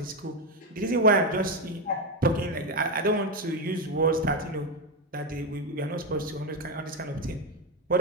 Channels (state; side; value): normal; both; correlation 0.10